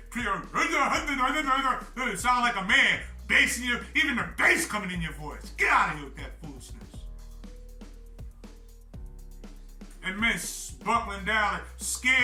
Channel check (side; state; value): both; identical; correlation 1.00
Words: You sound like a man. Bass in even the bass coming in your voice. Get out of here with that foolishness. And men buckling down, like,